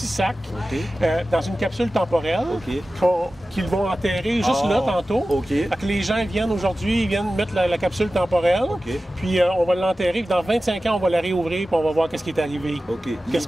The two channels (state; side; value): normal; both; correlation 0.95